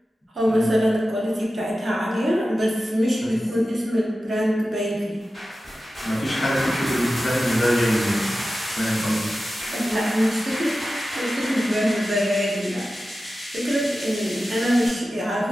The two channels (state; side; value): normal; both; correlation 0.94